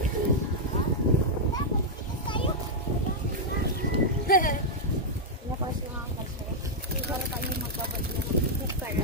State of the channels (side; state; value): both; normal; correlation -0.04